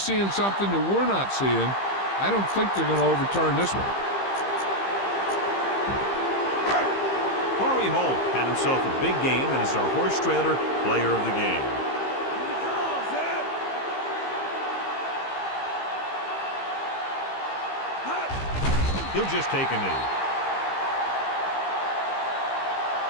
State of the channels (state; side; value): late; right; 15 ms